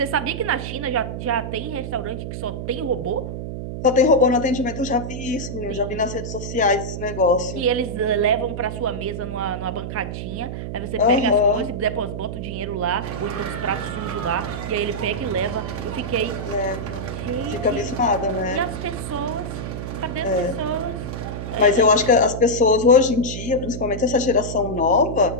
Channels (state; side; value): noise; right; hum, 6 dB below the sound